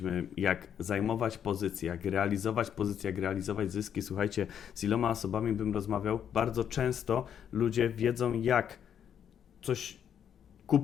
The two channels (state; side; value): quieter; right; 8.8 dB